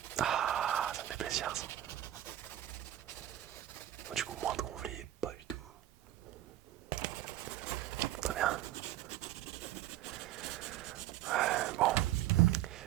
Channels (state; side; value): quieter; left; 13.5 dB